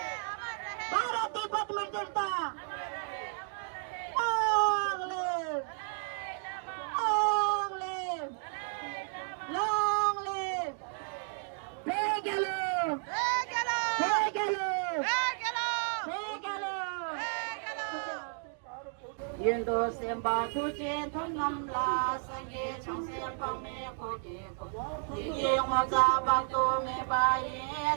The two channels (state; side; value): silent; left; 56 dB below the other